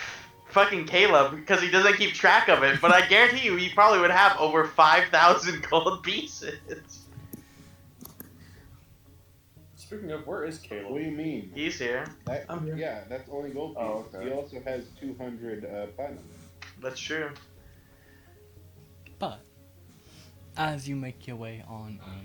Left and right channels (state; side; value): identical; both; correlation 1.00